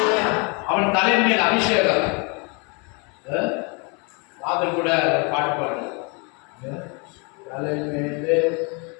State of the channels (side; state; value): right; quieter; 32.7 dB